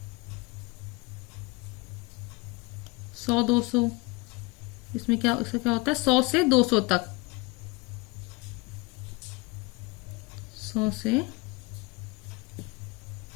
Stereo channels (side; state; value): right; quieter; 24.6 dB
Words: सौ 200, इसमें क्या, इसका क्या होता है, 100 से 200 तक। 100 से